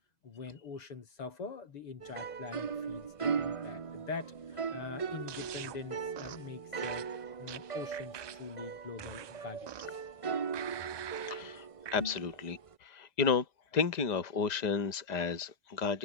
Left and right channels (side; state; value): right; late; 2.0 ms